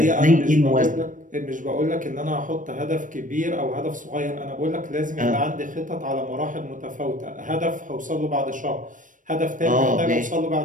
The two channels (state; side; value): late; left; 0.38 ms